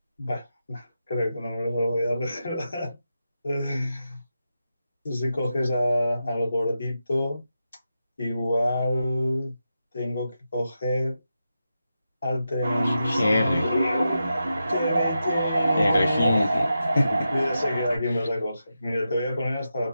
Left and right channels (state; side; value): inverted; both; correlation -0.88